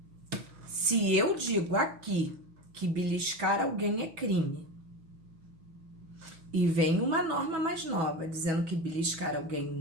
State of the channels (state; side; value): late; left; 6.1 ms